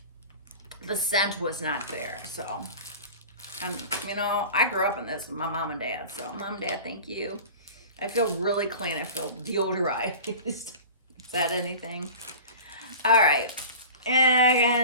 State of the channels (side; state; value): both; inverted; correlation -0.37